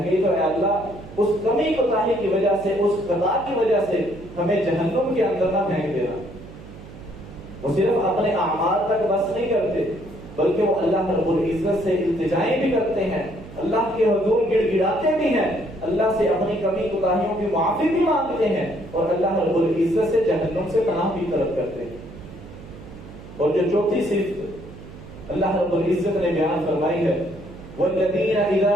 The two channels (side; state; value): right; noise; hum, 16 dB below the sound